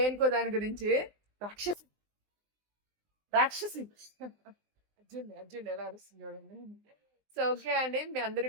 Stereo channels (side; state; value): left; late; 19 ms